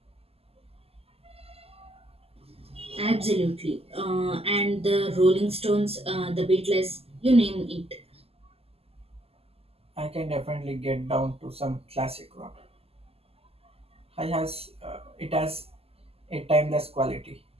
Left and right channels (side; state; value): left; late; 0.29 ms